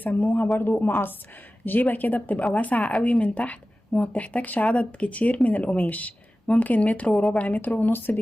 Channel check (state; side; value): normal; both; correlation 0.96